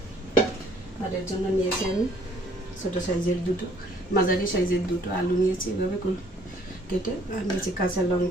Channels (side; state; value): both; normal; correlation 0.61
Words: আর এর জন্য নিয়েছি আমি ছোটো সাইজের দুটো, মাঝারি সাইজের দুটো আলু নিয়েছি এভাবে কেটে। আর নিয়েছি কাঁচা